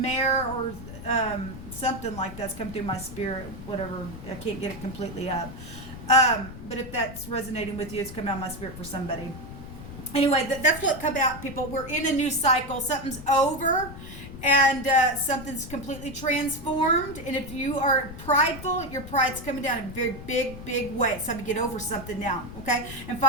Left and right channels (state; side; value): noise; left; rumble, 12 dB below the sound